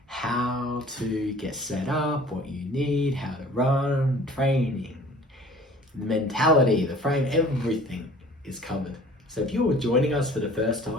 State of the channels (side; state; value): both; normal; correlation 0.48